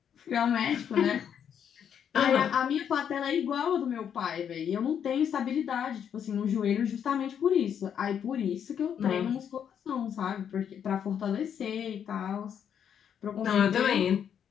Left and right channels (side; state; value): right; quieter; 8.4 dB